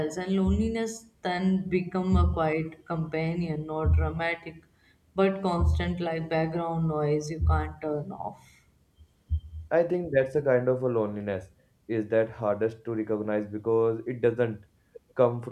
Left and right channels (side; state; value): both; identical; correlation 1.00